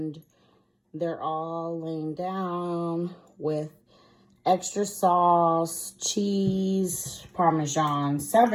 they're all laying down with extra sauce, cheese, Parmesan,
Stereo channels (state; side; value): identical; both; correlation 1.00